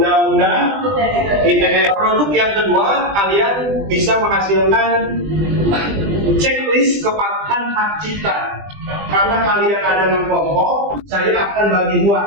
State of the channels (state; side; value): late; left; 20 ms